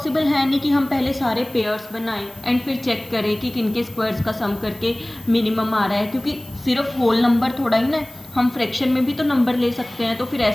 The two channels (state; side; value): noise; left; hiss, 27 dB below the sound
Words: है नहीं कि हम पहले सारे पेयर्स बनाएं एंड फिर चेक करें कि किनके स्क्वायर्स का सम करके मिनिमम आ रहा है, क्योंकि सिर्फ होल नंबर थोड़ा ही ना, हम फ्रैक्शन में भी तो नंबर ले सकते हैं। तो फिर